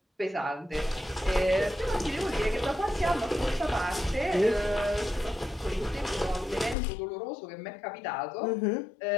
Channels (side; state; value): right; drops out; at 6.8 s